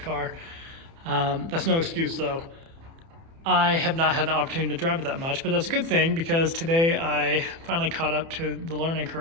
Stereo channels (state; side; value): late; left; 30 ms